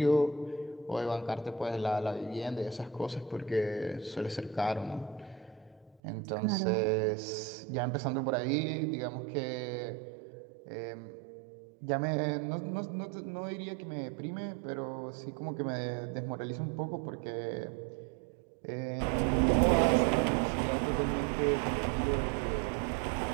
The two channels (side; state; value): left; drops out; at 6.0 s